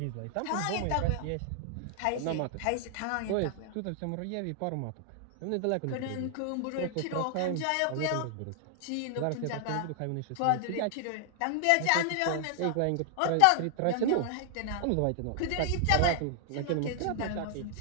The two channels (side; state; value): both; different; correlation 0.00